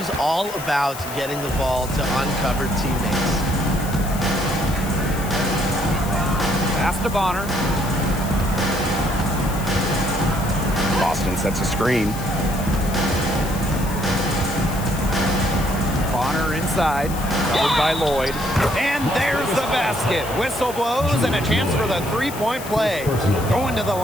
all about getting the ball to uncovered teammates. Pass to Bonner. Boston sets a screen. Bonner inside, covered by Lloyd. And there's the basket. Whistle blows and a chance for the three-point play. Going to the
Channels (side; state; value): left; noise; hiss, 13 dB below the sound